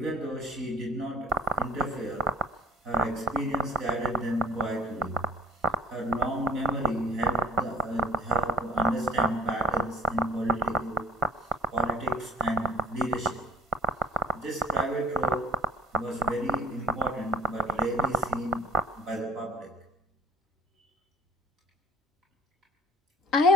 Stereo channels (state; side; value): normal; both; correlation 0.49